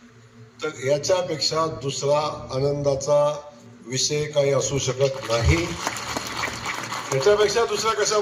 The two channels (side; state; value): both; identical; correlation 1.00